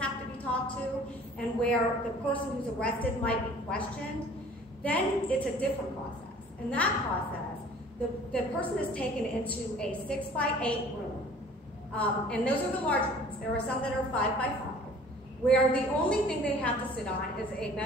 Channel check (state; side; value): normal; both; correlation 0.50